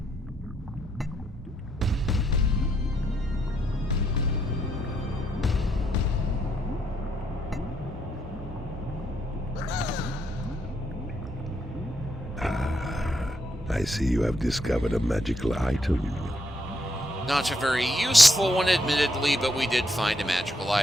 I see you have discovered a magical item. Not a very useful one, admittedly, but we did find a magical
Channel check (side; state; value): both; normal; correlation 0.76